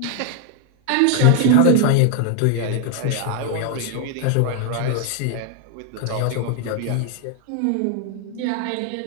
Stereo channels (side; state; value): both; different; correlation 0.00